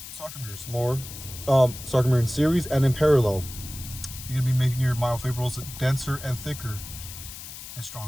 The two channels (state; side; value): noise; left; hiss, 12 dB below the sound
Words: sarcomeres, more sarcomere in series and in parallel. You're gonna be making your myofibrils denser and thicker and